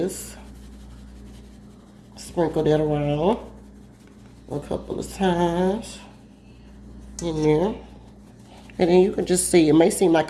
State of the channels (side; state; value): both; identical; correlation 1.00